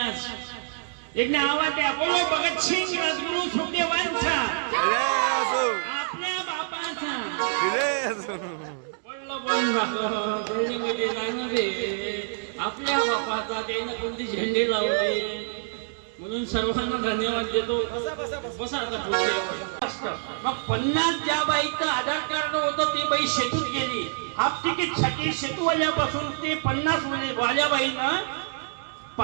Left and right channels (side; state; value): left; silent; digital silence